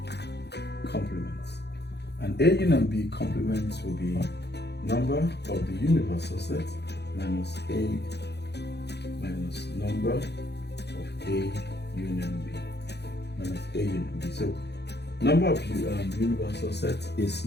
complements. And A union B complements will be number of the universal set minus A minus number of A union B minus A union B. So number of universal set is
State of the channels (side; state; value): right; late; 0.49 ms